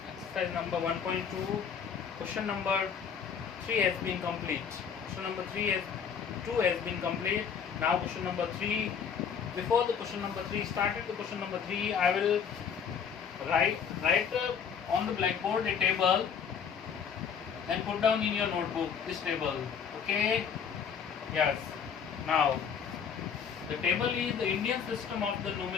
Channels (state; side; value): quieter; right; 7.1 dB